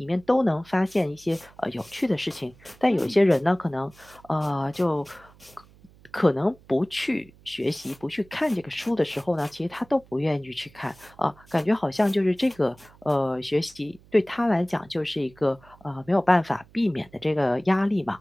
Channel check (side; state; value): right; noise; hum, 26 dB below the sound